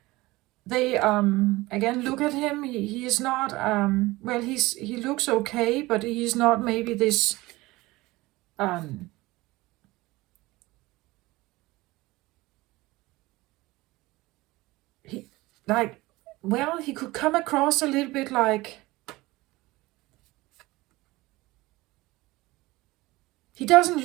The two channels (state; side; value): quieter; left; 20.2 dB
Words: they, again, look at him. He is not, well, he looks okay, but he's not maybe this, like, well, he could come across a little bit like, he doesn't